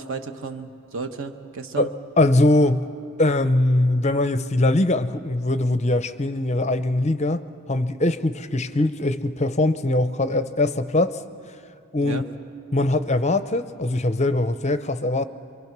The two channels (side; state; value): both; normal; correlation 0.60